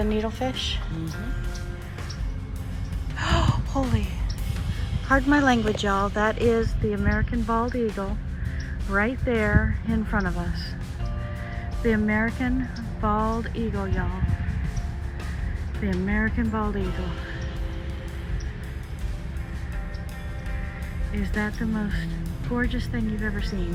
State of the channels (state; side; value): identical; both; correlation 1.00